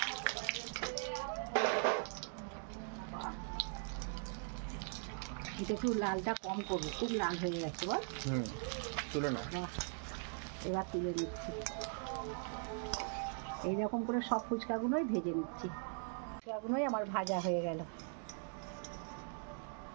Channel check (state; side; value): silent; left; 51 dB below the other